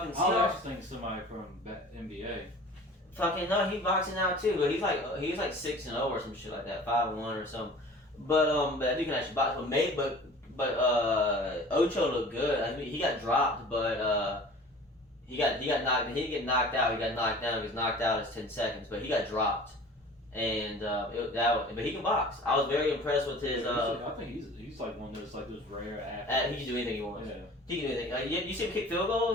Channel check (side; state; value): both; normal; correlation 0.44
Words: Seahawks. I was actually thinking somebody from NBA. Fucking no, he's boxing now too. But he's like 6-0 or some shit like that, 5-1 or something. But that dude can actually box. But Ocho looked good. I mean, he got dropped, but he got knocked. He didn't get knocked out. He got knocked down. He was knocked out as 10 seconds, but he got dropped. And but he can box. I was very impressed with his. I think he's like one of those rare athletes. He can do anything he wants. Yeah. He can do anything. Like, you see him kick field